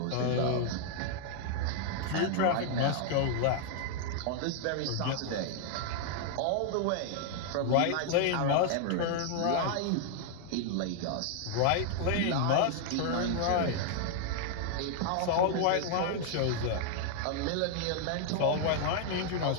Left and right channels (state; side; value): different; both; correlation 0.00